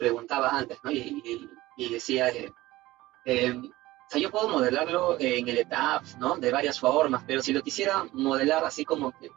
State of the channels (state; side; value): quieter; left; 17.9 dB